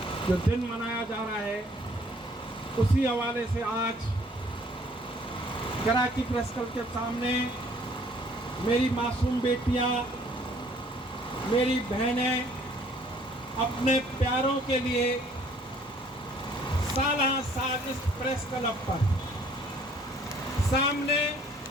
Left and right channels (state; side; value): normal; both; correlation 0.59